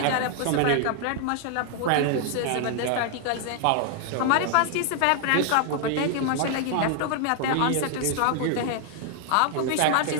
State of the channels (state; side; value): different; both; correlation 0.00